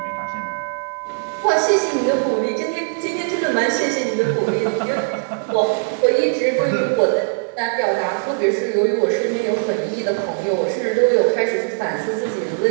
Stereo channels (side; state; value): left; silent; 66 dB below the other